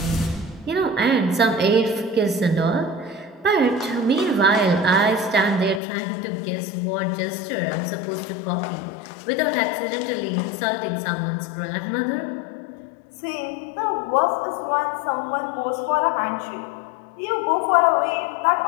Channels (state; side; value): drops out; right; at 5.8 s